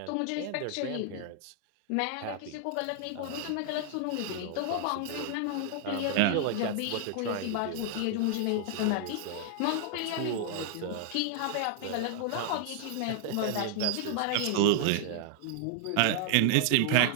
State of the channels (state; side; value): different; both; correlation 0.00